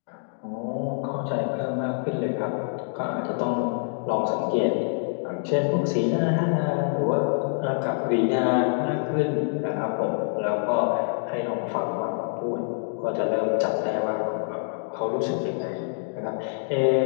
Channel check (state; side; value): silent; right; digital silence